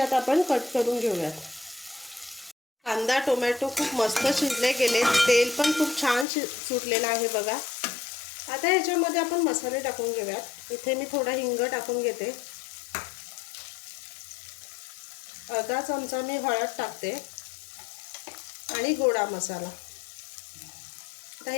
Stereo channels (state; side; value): drops out; right; at 6.2 s